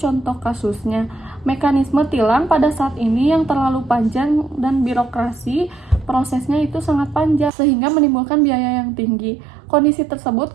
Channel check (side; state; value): left; drops out; at 7.5 s